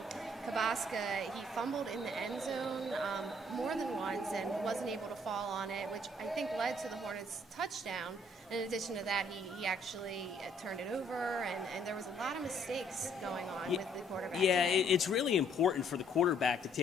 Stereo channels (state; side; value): normal; both; correlation 0.64